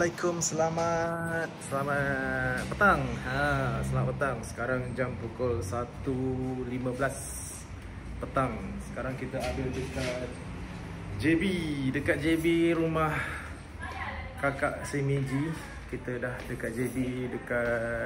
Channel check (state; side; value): identical; both; correlation 1.00